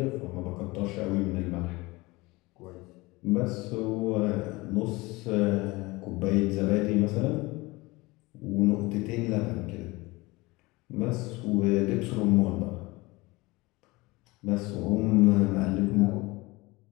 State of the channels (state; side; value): quieter; right; 22.4 dB